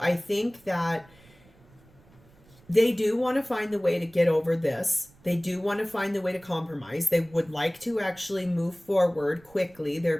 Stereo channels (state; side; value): noise; right; rumble, 28 dB below the sound